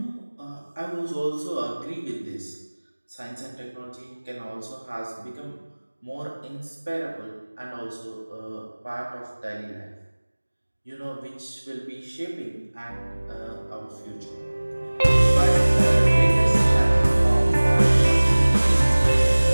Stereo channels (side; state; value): both; inverted; correlation -1.00